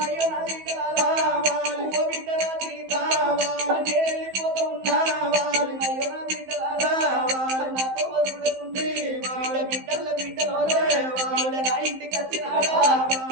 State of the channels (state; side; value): late; left; 15 ms